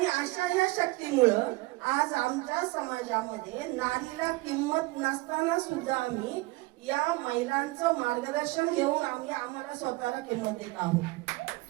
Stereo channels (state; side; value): quieter; left; 22.2 dB